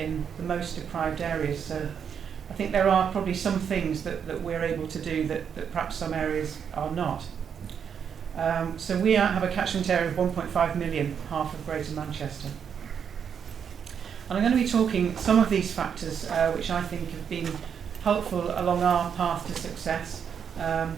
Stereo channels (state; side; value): quieter; left; 7.5 dB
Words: the most deprived areas. So I think there are probably some things that we're able to do that perhaps some areas are not. So we have a catchment area of 1.5 million, half of Greater Manchester. And I'm going to be talking some of these factors which I think have been helpful along our path to success.